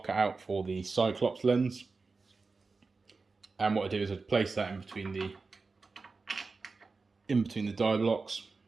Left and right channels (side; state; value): left; quieter; 4.1 dB